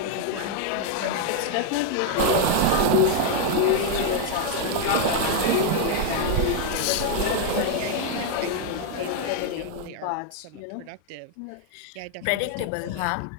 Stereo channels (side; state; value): both; different; correlation 0.00